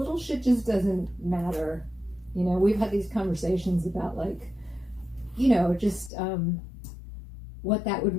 shit just doesn't matter. You know, we've had these conversations about, like, you know, just what that would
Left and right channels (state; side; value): drops out; right; at 6.1 s